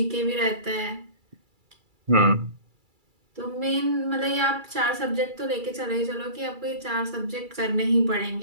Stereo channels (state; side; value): late; left; 2.3 ms